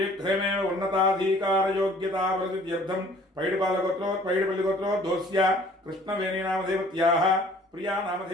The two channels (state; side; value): normal; both; correlation 0.54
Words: उन्नताधिकारयोग्यताप्रसिद्ध्यर्थं पैडपल्लिगोत्रोद्भवस्य कृष्णवेणी नामदेवत्याः प्रिया